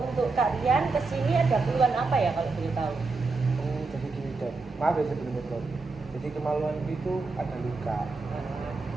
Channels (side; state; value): left; quieter; 3.9 dB